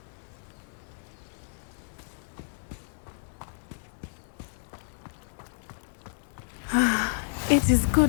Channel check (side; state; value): right; silent; 57 dB below the other